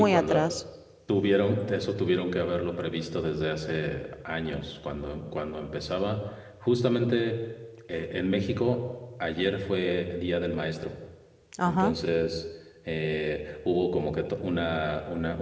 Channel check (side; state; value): both; identical; correlation 1.00